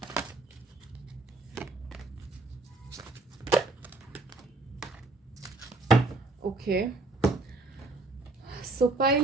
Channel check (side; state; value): left; quieter; 3.2 dB